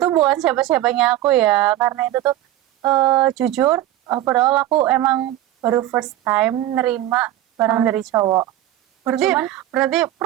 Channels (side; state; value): left; quieter; 13.8 dB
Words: bukan siapa-siapanya aku ya. Karena itu tuh jujur overall aku emang baru first time nerima barang dari cowok. berarti Cuman berarti